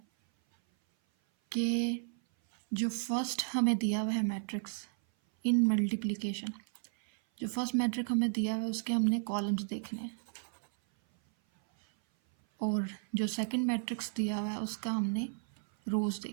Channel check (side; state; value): left; silent; 56 dB below the other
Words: कि जो फर्स्ट हमें दिया हुआ है मैट्रिक्स इन मल्टीप्लिकेशन, जो फर्स्ट मैट्रिक हमें दिया हुआ है उसके हमने कॉलम्स देखने हैं, और जो सेकंड मैट्रिक्स दिया हुआ है उसका हमने रोज़